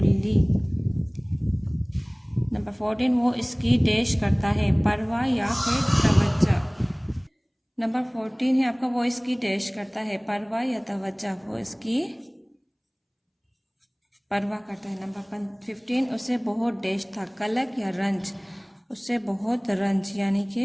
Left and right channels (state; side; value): identical; both; correlation 1.00